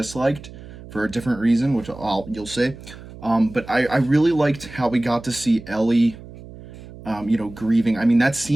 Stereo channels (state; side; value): noise; right; hum, 16 dB below the sound